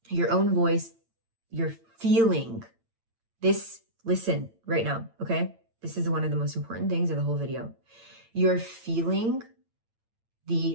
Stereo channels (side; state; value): left; late; 8.9 ms